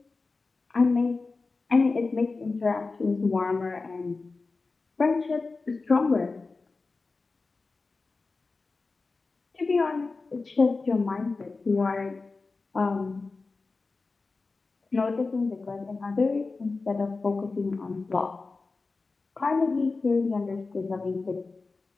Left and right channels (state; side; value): quieter; right; 3.9 dB